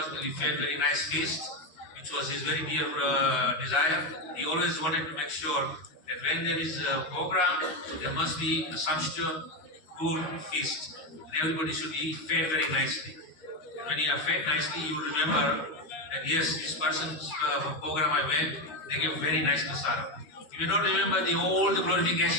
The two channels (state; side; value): late; right; 13 ms